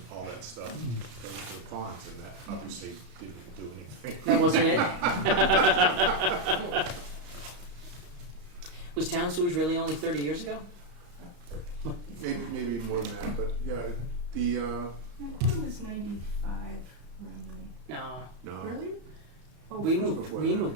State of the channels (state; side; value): late; left; 34 ms